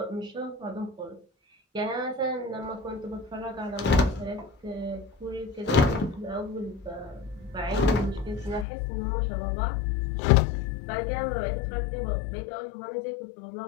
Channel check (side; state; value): right; drops out; at 8.7 s